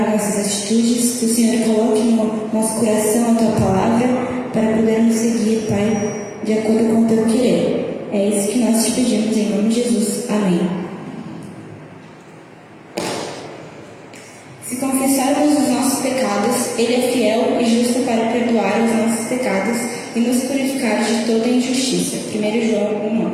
nossas atitudes, que o Senhor coloque no nosso coração a tua palavra para podermos seguir, Pai, de acordo com o teu querer. É isso que nós te pedimos em nome de Jesus. Amém. Se confessarmos os nossos pecados, Ele é fiel e justo para perdoar os nossos pecados e nos purificar de toda injustiça. 1 João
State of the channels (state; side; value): identical; both; correlation 1.00